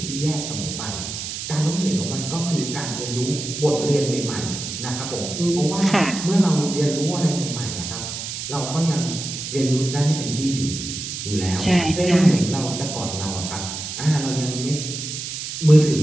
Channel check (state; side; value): noise; right; hiss, 6 dB below the sound